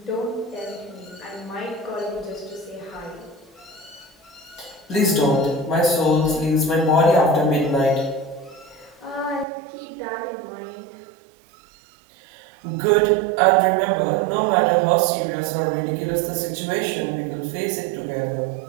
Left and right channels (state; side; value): drops out; left; at 9.5 s